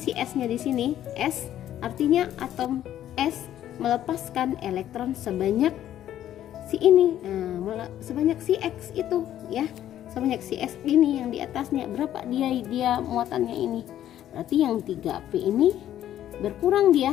S-nya di sini. S artinya atom S melepaskan elektron sebanyak si ini. Nah, sebanyak si X itu ya. Sebanyak si S ini yang di atasnya. Berapa dia muatannya ini? Berarti yang 3P ini berkurang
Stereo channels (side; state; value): right; quieter; 11.7 dB